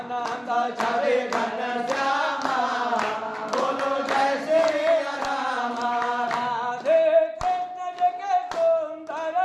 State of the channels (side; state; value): both; identical; correlation 1.00